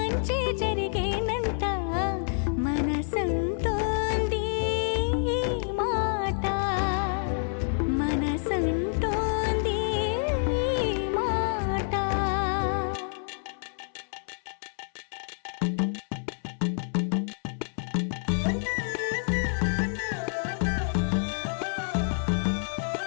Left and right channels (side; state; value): right; silent; 57 dB below the other